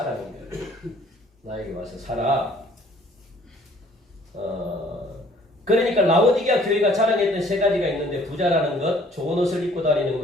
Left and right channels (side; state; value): both; normal; correlation 0.57